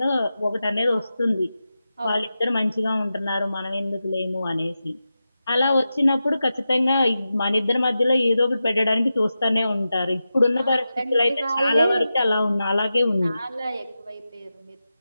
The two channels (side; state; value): both; inverted; correlation -0.92